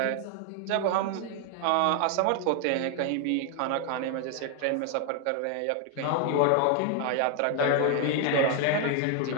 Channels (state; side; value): different; both; correlation 0.00